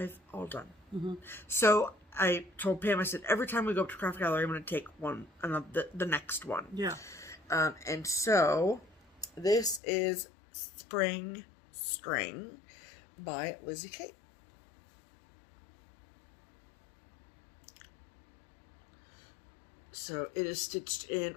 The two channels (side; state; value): right; drops out; at 9.8 s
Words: all done. So I told Pam, I said, every time we go up to Craft Gallery, I'm going to take one, the next one. Yeah. And so this is Spring String by Lizzie Kate. So it is stitched in